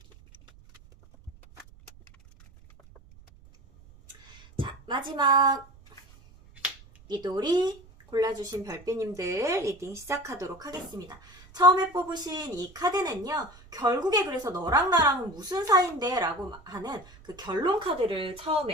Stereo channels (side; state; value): right; noise; rumble, 24 dB below the sound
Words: 자, 마지막 리돌이 골라주신 별빛님들 리딩 시작하도록 하겠습니다. 처음에 뽑으신 이 카드는요, 결국에 그래서 너랑 나랑은 무슨 사이인데 라고 하는 그 결론 카드를